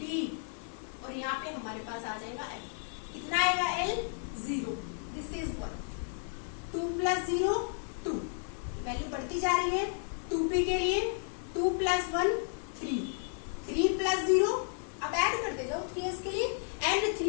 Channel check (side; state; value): right; silent; 56 dB below the other